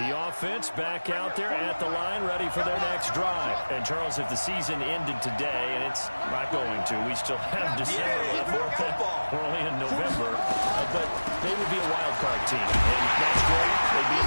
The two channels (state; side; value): inverted; both; correlation -1.00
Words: offense back out there at the line, ready for their next drive. And, Charles, if the season ended today, and it's not going to, we still have December left. We're only in November. But they would be a wild card team. And that's great. They'd be